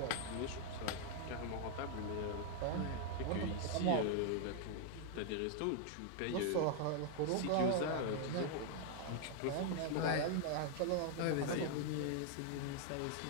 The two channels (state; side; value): different; both; correlation 0.00